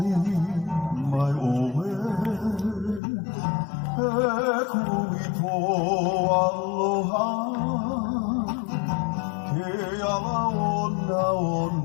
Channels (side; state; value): right; drops out; at 3.0 s